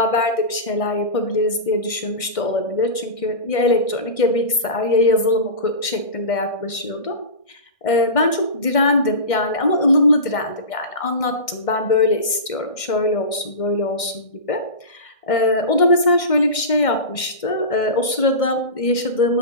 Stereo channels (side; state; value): right; late; 1.6 ms